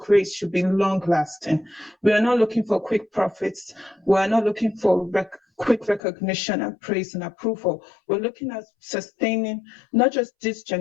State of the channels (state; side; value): drops out; right; at 6.0 s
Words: should be long lasting. We are not looking for quick profits. We are not looking for quick recognition and praise and approval. We're looking at sustaining not just this